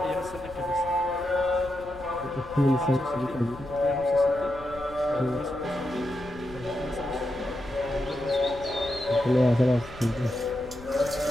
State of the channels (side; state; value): left; noise; rumble, 17 dB below the sound